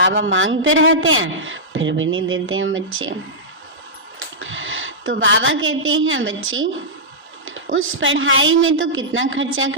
मांगते रहते हैं फिर भी नहीं देते हैं बच्चे। तो बाबा कहते हैं बच्चे उस पढ़ाई में तो कितना खर्चा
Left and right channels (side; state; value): both; normal; correlation -0.12